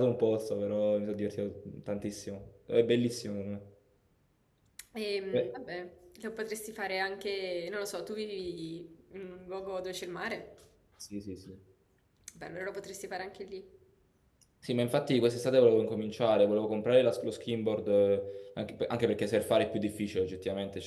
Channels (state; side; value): identical; both; correlation 1.00